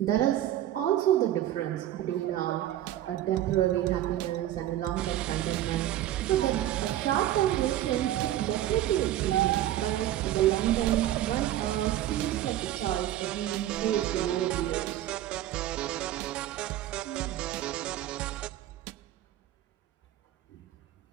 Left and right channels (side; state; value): left; quieter; 13.2 dB